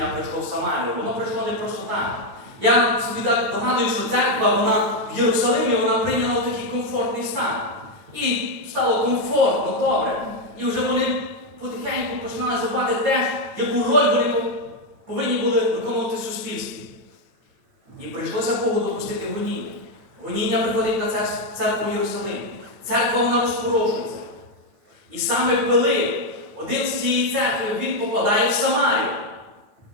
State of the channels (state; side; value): late; left; 9.0 ms